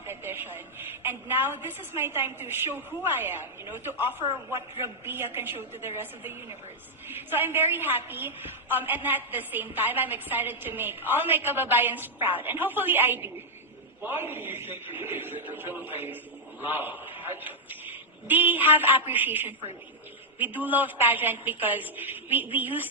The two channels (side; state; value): both; normal; correlation -0.04